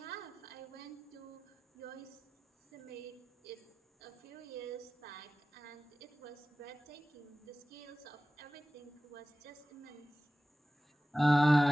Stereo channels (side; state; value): both; normal; correlation 0.96